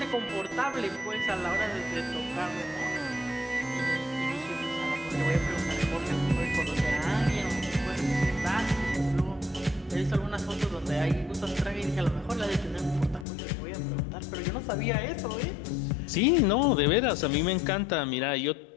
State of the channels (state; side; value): drops out; right; at 13.2 s